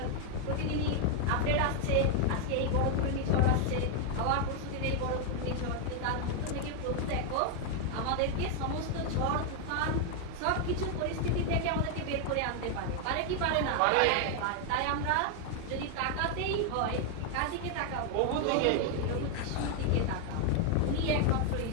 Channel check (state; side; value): different; both; correlation 0.01